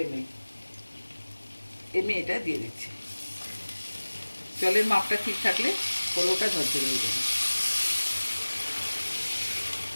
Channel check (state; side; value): inverted; both; correlation -1.00